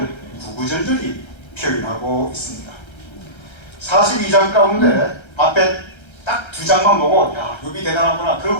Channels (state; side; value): late; right; 1.3 ms